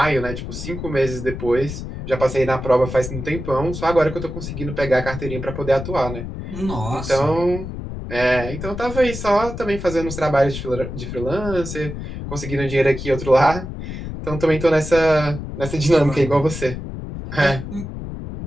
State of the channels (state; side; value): noise; left; rumble, 8 dB below the sound